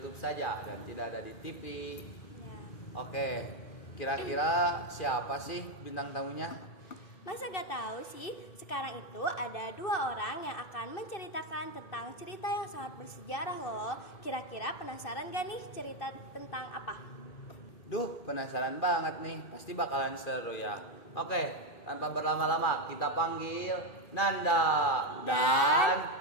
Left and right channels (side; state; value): right; late; 2.6 ms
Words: saja dan tidak ada di TV. Ya. Oke, kira-kira siapa sih bintang tamunya? Masa gak tahu sih, sekarang itu ada 2 orang yang akan menceritakan tentang cerita yang sangat bersejarah loh. Kira-kira penasaran gak nih cerita tentang apa? Duh, penasaran banget nih, pasti bakalan seru ya. Oke, tanpa berlama-lama kita panggil Nanda dan